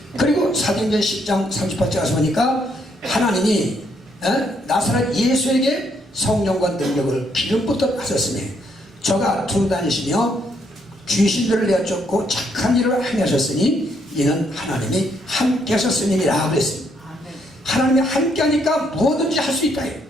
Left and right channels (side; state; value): both; normal; correlation 0.72